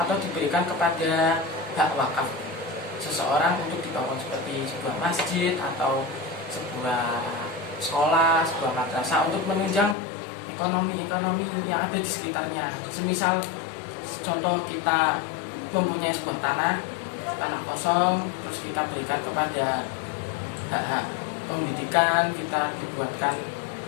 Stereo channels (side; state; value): right; drops out; at 10.0 s